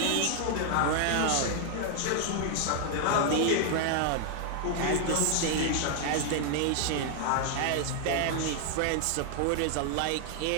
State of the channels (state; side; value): different; both; correlation 0.00